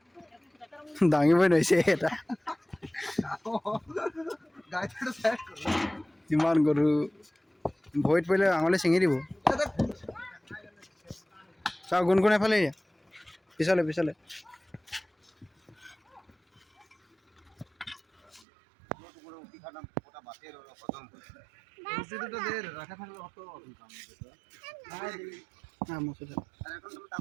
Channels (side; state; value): left; drops out; at 18.4 s